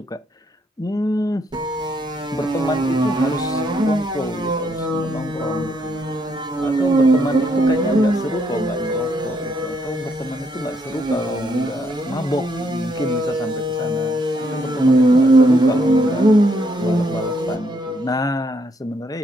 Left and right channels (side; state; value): both; normal; correlation 0.73